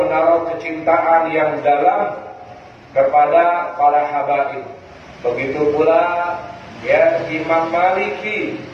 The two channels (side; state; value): both; identical; correlation 1.00